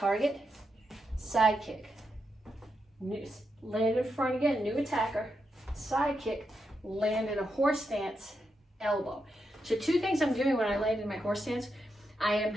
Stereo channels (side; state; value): both; normal; correlation 0.84